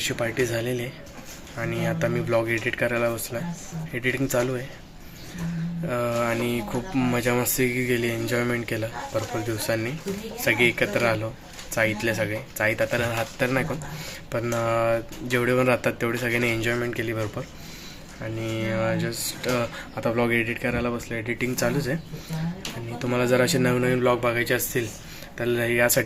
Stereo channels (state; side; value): identical; both; correlation 1.00